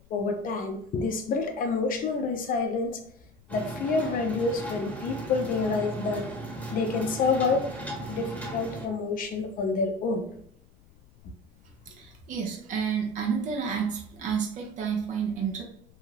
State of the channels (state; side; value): noise; left; rumble, 28 dB below the sound